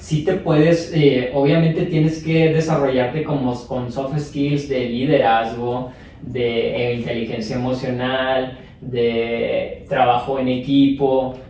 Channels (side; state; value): both; identical; correlation 1.00